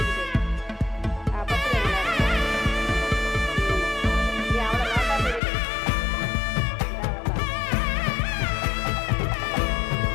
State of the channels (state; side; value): drops out; right; at 5.4 s